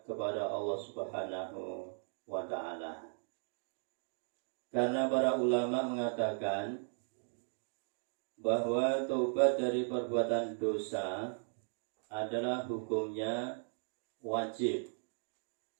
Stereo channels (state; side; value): silent; left; digital silence